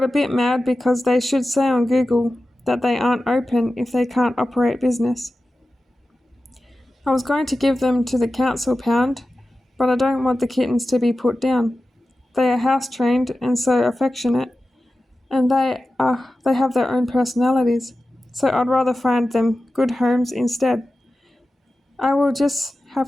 a bit mad because they should say on Google that they aren't open if they can't operate business. I was going to give them to the council pound, but I don't want the kittens to be put down. They are house trained and so affectionate, and they have their own personalities, so I'd rather find them good homes instead. I will just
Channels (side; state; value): both; normal; correlation 0.94